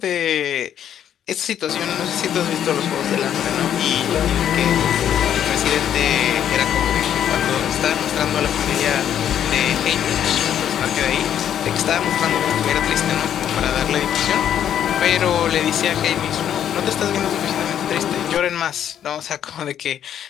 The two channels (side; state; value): right; quieter; 9.8 dB